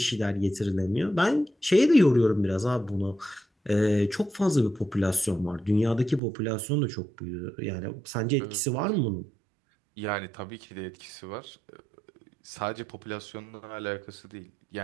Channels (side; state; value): left; drops out; at 6.2 s